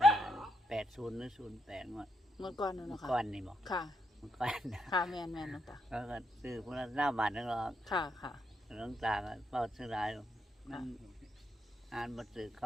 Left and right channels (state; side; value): normal; both; correlation 0.80